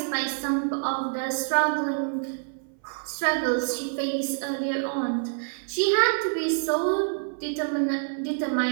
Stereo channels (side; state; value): left; silent; 60 dB below the other